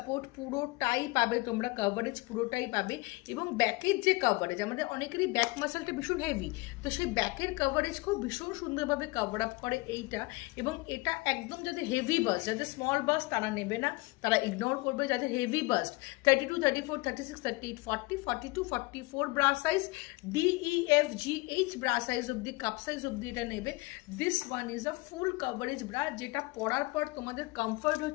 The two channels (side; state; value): right; quieter; 23.4 dB